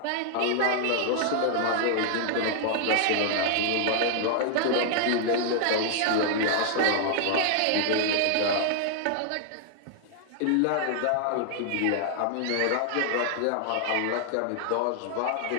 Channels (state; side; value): different; both; correlation -0.01